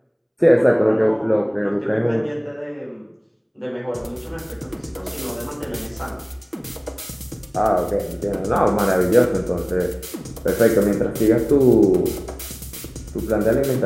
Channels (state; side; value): identical; both; correlation 1.00